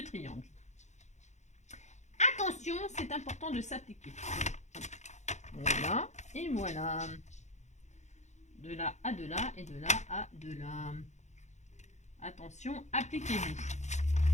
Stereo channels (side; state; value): right; late; 0.34 ms